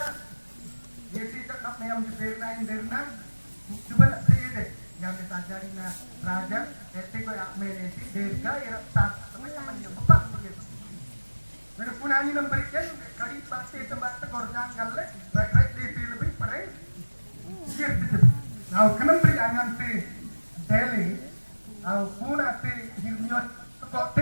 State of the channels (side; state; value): both; inverted; correlation -1.00